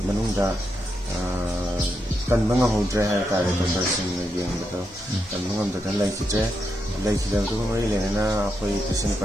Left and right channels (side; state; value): both; normal; correlation 0.83